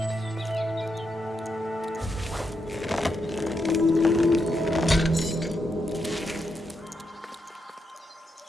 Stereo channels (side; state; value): both; normal; correlation 0.83